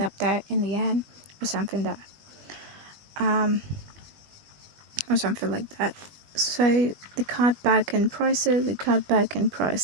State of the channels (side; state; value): left; late; 21 ms